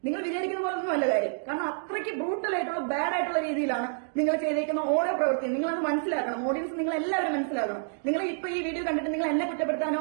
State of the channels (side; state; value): left; silent; digital silence